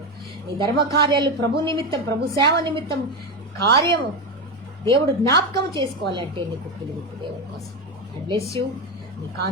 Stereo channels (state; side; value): normal; both; correlation 0.14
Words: నీ ధర్మకార్యాలు ప్రభు నిమిత్తం, ప్రభు సేవ నిమిత్తం కార్యము దేవుడు జ్ఞాపకం చేసుకోవాలంటే నీ కుప్పిలు విప్పు దేవుని కోసం. I bless you. నీ